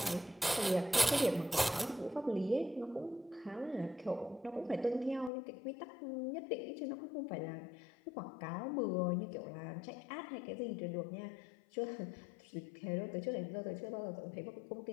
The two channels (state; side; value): drops out; right; at 5.3 s